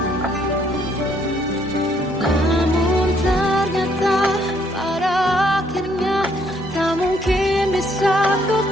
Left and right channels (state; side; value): normal; both; correlation 0.68